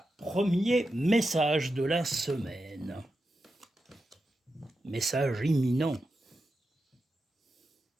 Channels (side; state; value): both; normal; correlation 0.89